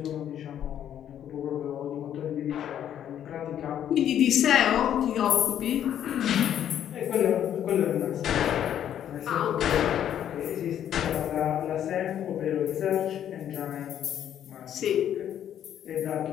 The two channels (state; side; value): quieter; right; 10.2 dB